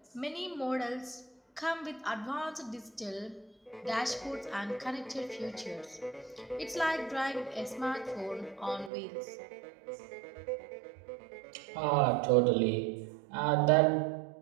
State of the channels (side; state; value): left; drops out; at 8.9 s